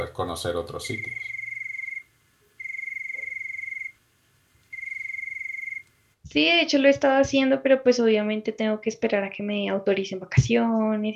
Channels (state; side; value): identical; both; correlation 1.00